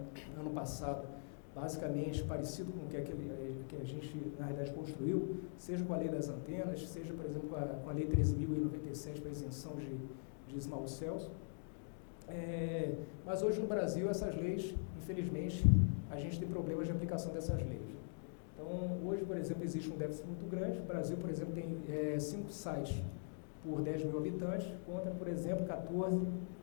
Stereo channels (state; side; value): silent; right; digital silence